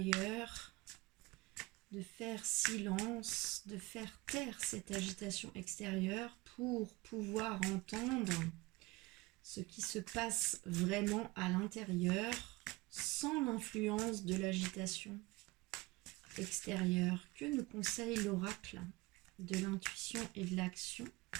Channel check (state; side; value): quieter; left; 22.2 dB